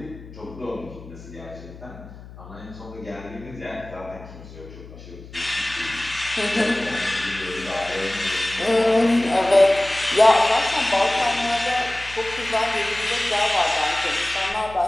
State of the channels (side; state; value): left; noise; hum, 17 dB below the sound